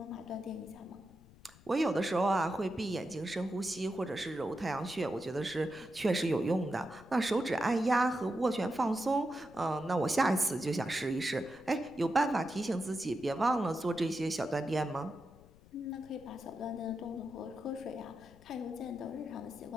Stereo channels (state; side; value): noise; left; rumble, 24 dB below the sound